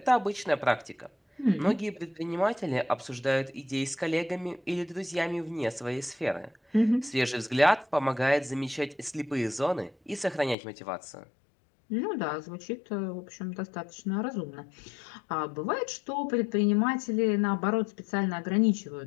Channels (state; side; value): drops out; right; at 10.6 s